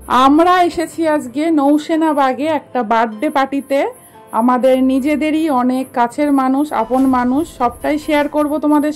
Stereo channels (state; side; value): identical; both; correlation 1.00